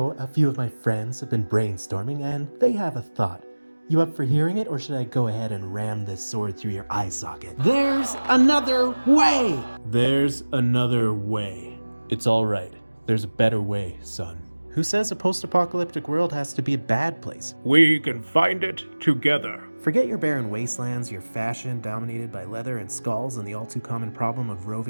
a few of my friends have been brainstorming and they have a thought. You up for hearing it, or should I go ahead and ram this sword through your eye socket? There's another way! There's another way. It's all right. There's a better way, son. Who says a post-apocalyptic world has to be a bad place? We can find it together. Forget your barren wastelands, your fashion dominated by leather and skulls, and the all-too-common problem of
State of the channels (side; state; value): both; inverted; correlation -1.00